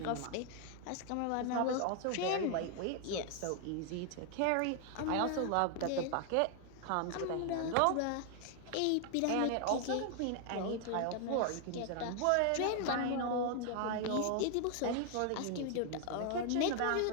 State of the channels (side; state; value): both; different; correlation 0.00